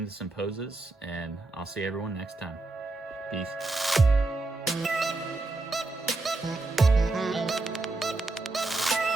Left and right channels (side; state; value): left; quieter; 3.2 dB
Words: some poses, and I'll see everyone next time. Peace.